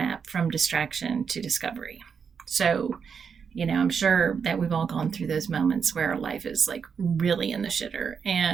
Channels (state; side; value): quieter; left; 6.4 dB